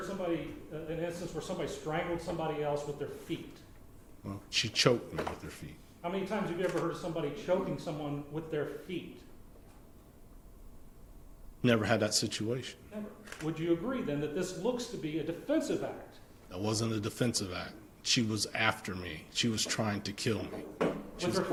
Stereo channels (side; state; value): both; identical; correlation 1.00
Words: somebody, an instance where somebody strangled somebody else with their feet? Well, she choked me with her feet. How many times have you ever heard of somebody choking someone with their feet? Never had that situation. Never. Would you agree then that this looks to be a defensive act? That wasn't a defensive act. She was after me. She was trying to kill me. With her